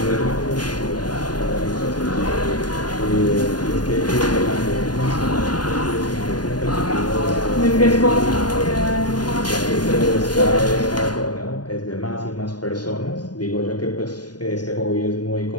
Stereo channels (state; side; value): late; right; 0.70 ms